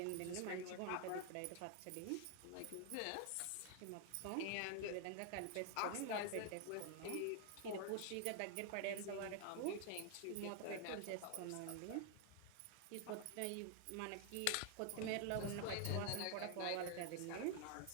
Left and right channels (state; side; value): different; both; correlation 0.00